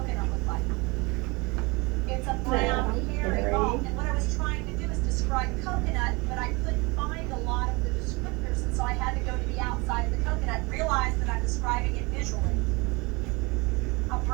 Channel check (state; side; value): quieter; left; 26.3 dB